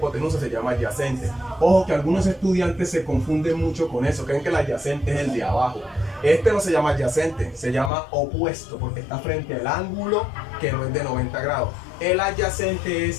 se llama adyacente. Ojo que algunos estudiantes se confunden mucho con eso, creen que el adyacente es el de abajo. Este no se llama adyacente, se llama opuesto porque está frente al ángulo que no es de 90 grados. El adyacente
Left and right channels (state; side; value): drops out; right; at 7.9 s